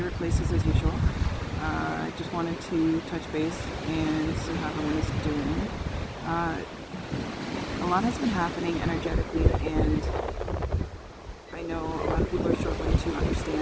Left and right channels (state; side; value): identical; both; correlation 1.00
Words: places as usual. I just wanted to touch base and see how everyone is doing. A lot has been happening energetically, and I know a lot of people are struggling to